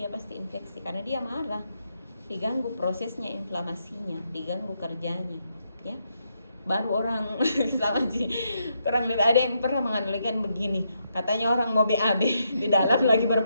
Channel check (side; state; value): both; inverted; correlation -0.79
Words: pasti infeksi karena dia marah, diganggu prosesnya inflamasinya, diganggu kerjanya, ya. Baru orang sama sih, kurang lebih ada yang pernah menganalogikan begini, katanya orang mau BAB di dalam lagi